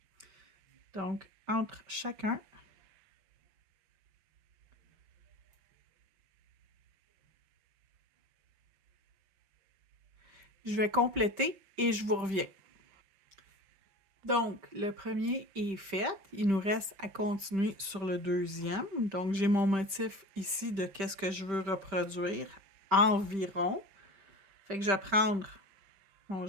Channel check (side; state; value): left; late; 5.1 ms